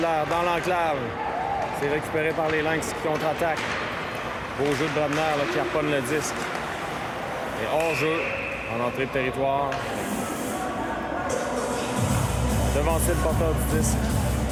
dans l'enclave. C'est récupéré par les Lynx qui contre-attaquent. Beau jeu de Brodner là, qui harponne le disque. Et hors-jeu en entrée de territoire. Devancer le porteur du disque.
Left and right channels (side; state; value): both; identical; correlation 1.00